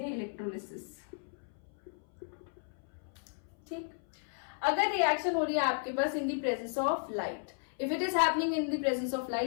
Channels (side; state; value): right; silent; 55 dB below the other